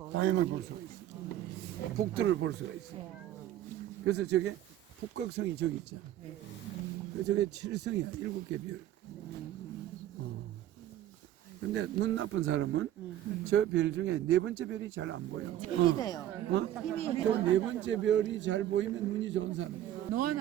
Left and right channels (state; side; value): quieter; left; 12.3 dB